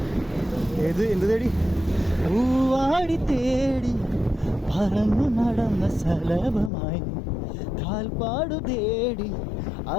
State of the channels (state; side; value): drops out; right; at 6.7 s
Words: എന്ത് തേടി? പൂവാടി തേടി പറന്നു നടന്ന ശലഭമായി കാൽപ്പാടു തേടി